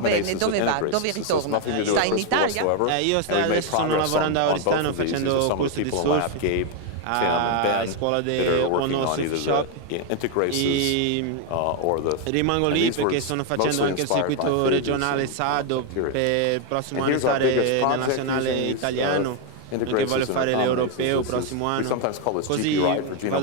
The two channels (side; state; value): both; different; correlation 0.01